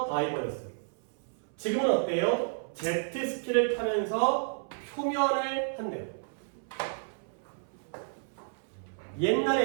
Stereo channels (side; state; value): left; silent; 57 dB below the other